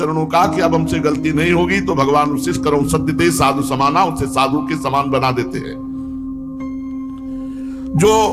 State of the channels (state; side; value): identical; both; correlation 1.00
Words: का कि अब हमसे गलती नहीं होगी, तो भगवान उसी करो सत्यते साधु समाना, उसे साधु के समान बना देते हैं। जो